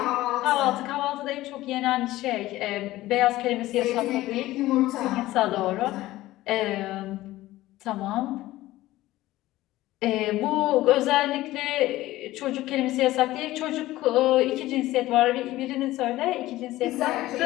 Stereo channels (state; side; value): quieter; right; 16.6 dB